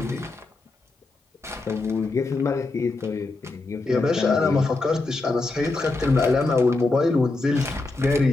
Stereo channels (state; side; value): quieter; right; 3.3 dB